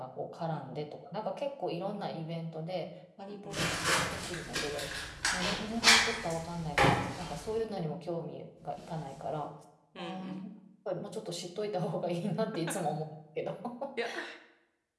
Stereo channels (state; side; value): identical; both; correlation 1.00